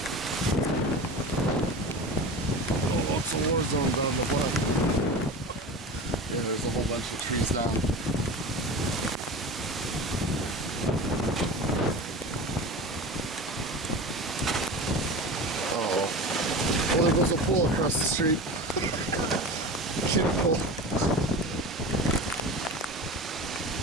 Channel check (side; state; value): both; normal; correlation 0.31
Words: Oh, lots of war zones on the block. Yeah, there's a whole bunch of trees down. Oh, there goes a pool across the street. Kiddie pool.